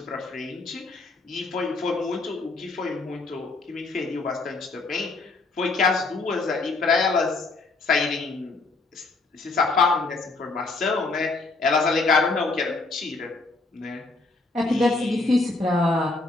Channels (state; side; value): quieter; right; 3.5 dB